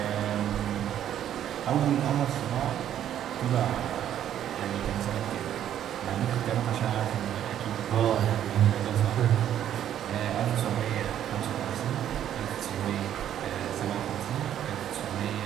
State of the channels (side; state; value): left; quieter; 10.6 dB